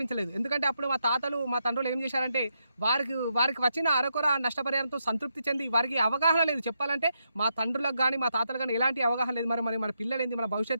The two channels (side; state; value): both; inverted; correlation -0.82